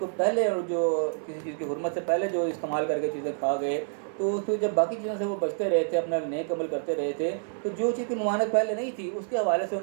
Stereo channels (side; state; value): left; silent; 59 dB below the other